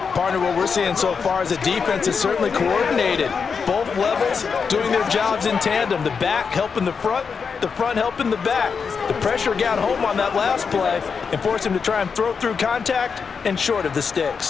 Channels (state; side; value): quieter; right; 5.8 dB